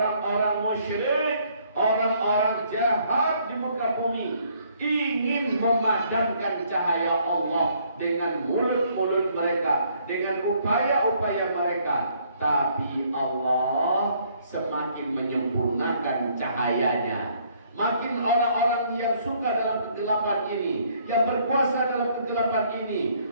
musyrik, orang-orang jahat di muka bumi ingin memadamkan cahaya Allah dengan mulut-mulut mereka, dengan upaya-upaya mereka. Tapi Allah semakin menyempurnakan cahayanya. Makin orang-orang yang suka dalam kegelapan ini, yang berkuasa dalam kegelapan ini,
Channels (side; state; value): both; inverted; correlation -0.65